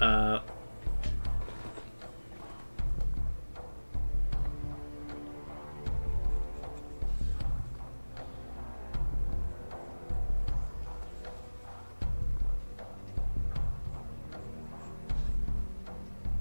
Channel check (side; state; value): both; inverted; correlation -1.00